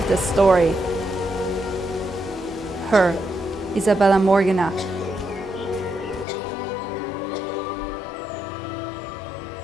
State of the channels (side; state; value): right; drops out; at 6.2 s